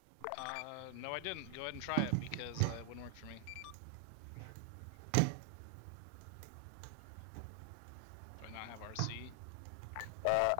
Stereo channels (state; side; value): different; both; correlation 0.00